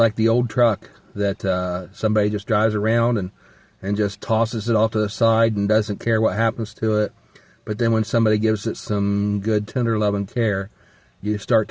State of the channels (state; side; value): identical; both; correlation 1.00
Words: the old truck that somebody just drives around and just tosses it off to the side and doesn't care what happens to it. But then when somebody gives it some good, tender love and care, you start